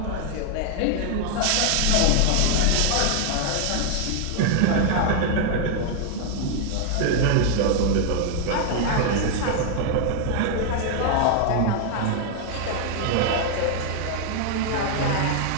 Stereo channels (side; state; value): both; different; correlation 0.00